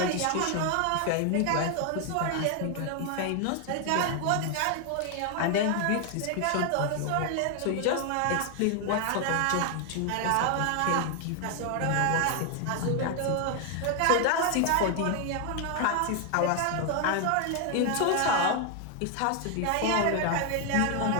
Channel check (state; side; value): different; both; correlation 0.01